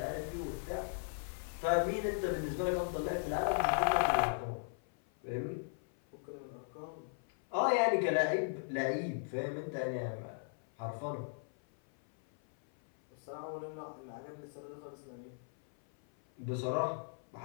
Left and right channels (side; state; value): right; silent; 53 dB below the other